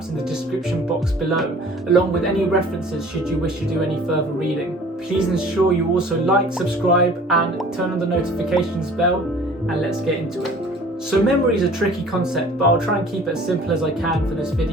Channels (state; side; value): normal; both; correlation 0.49